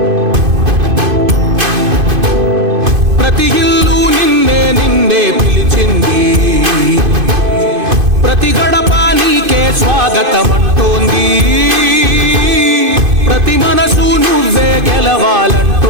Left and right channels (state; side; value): late; left; 2.5 ms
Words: ప్రతి ఇల్లు నిన్నే నిన్నే పిలిచింది, ప్రతి గడప నీకే స్వాగతమంటోంది, ప్రతి మనసు నువ్వే